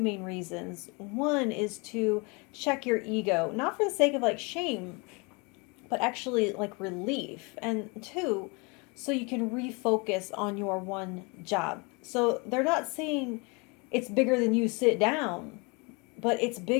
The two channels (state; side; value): quieter; right; 29.7 dB